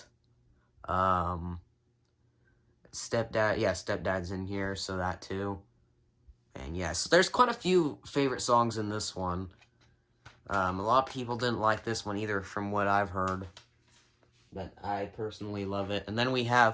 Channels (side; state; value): both; identical; correlation 1.00